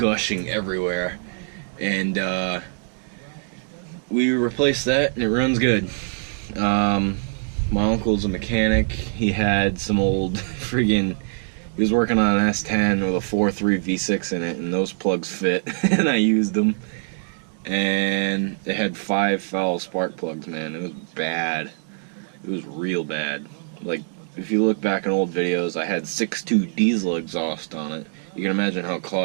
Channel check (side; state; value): left; silent; 63 dB below the other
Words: everywhere. And we replaced that, and it runs good. my uncle's a mechanic. He had some old friggin', he was working on an S10 with a 4.3 V6 in it, and those plugs fit, and I used them. And it had 5 foul spark plugs, man. It was bad. It was real bad. Like, if you look back in old videos, I had 6.2 diesel exhaust on it. You can imagine how